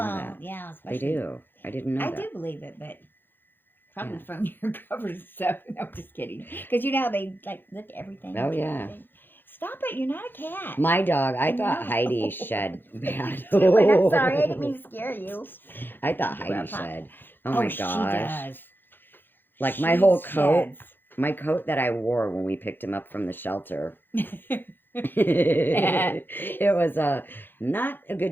Yeah, they do. I didn't know that. I do believe it, but probably from your covers and stuff. No, I'm just kidding. Because you know how they like lick everything. Oh yeah. Stop it! You're not a cat. My dog. I thought Heidi shed bad. I'm sorry. I didn't mean to scare you. I thought Heidi shed. Oh my gosh. She does. Like my whole coat. My coat that I wore when we picked him up from the shelter. It was not a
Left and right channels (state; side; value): late; right; 0.098 ms